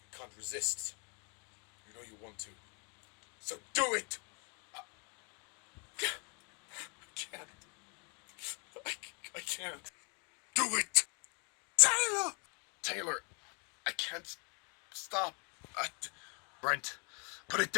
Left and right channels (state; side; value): quieter; right; 35.9 dB